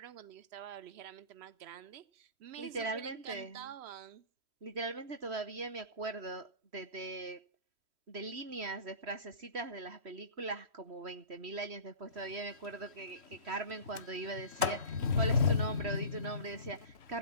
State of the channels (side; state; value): left; late; 3.1 ms